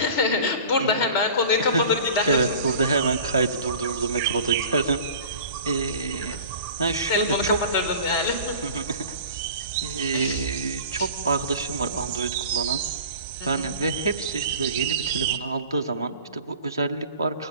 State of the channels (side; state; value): both; inverted; correlation -0.41